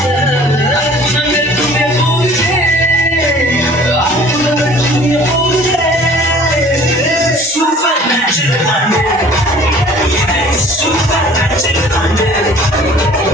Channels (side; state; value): both; normal; correlation 0.50